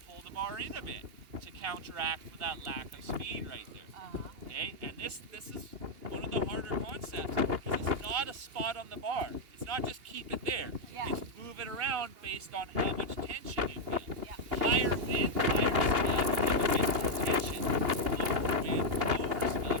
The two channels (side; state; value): left; late; 2.8 ms